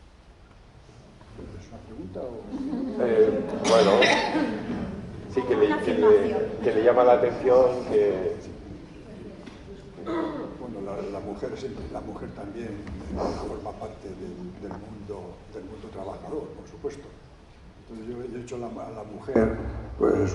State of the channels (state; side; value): identical; both; correlation 1.00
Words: ¿Es una pregunta o...? Bueno, sí que le llama la atención que... Bueno, la mujer también forma parte del mundo trabajador, por supuesto. Entonces yo he hecho a la mujer,